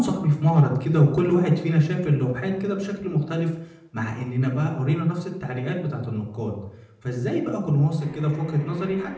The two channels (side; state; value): both; identical; correlation 1.00